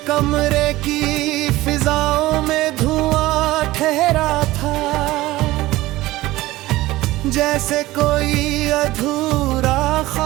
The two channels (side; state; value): left; quieter; 17.7 dB